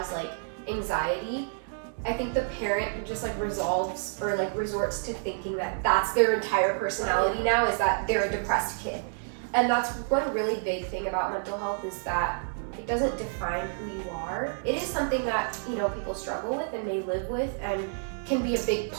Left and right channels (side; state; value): left; silent; digital silence